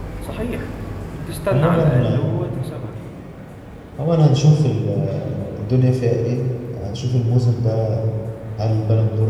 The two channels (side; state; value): both; identical; correlation 1.00